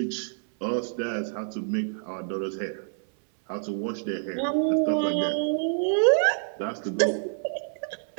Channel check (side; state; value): left; silent; 60 dB below the other